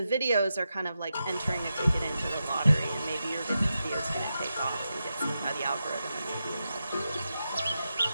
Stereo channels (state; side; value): inverted; both; correlation -0.88